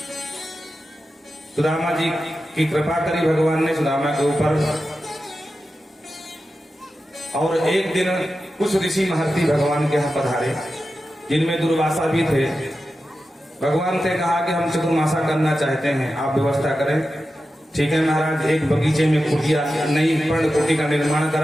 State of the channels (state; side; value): normal; both; correlation 0.92